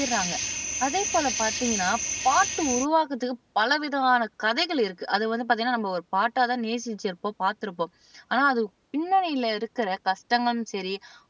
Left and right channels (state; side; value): identical; both; correlation 1.00